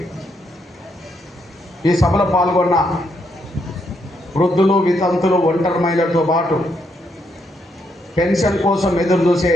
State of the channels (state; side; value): normal; both; correlation 0.77